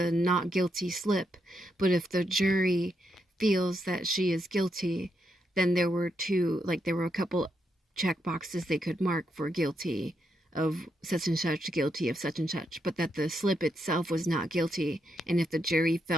not guilty slip, but if the jury feels that she is guilty, then there were a couple check boxes they could mark for guilty of such and such, guilty of such and such, but that the slip itself was not guilty. And if the jury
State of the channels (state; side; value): normal; both; correlation 0.81